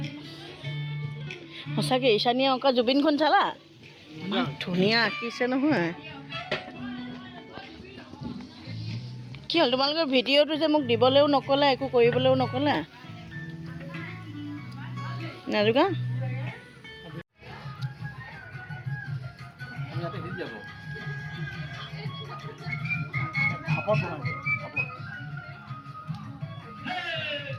সঁচাকৈ ঈশানীয়ে অংকা জুবিনখন চালা? ধুনীয়া আঁকিছে নহয়। কি হ'ল তোমালোকৰ ভিডিঅ'টো যে মোক দিবলৈও নক'লা, একো কৰিবলৈও নক'লা? নাজোকা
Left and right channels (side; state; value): both; identical; correlation 1.00